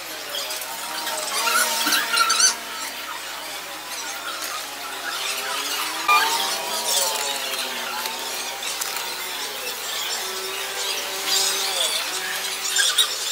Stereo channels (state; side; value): noise; right; hum, 30 dB below the sound